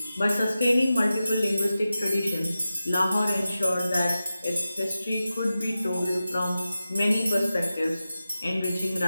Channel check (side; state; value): both; inverted; correlation -0.93